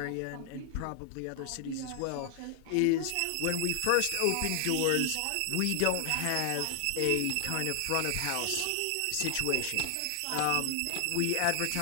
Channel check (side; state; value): both; different; correlation 0.00